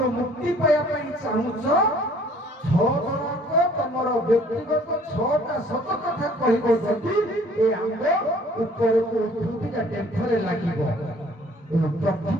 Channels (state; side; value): normal; both; correlation 0.56